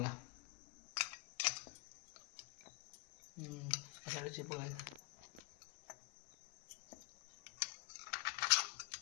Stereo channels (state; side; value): quieter; right; 26.1 dB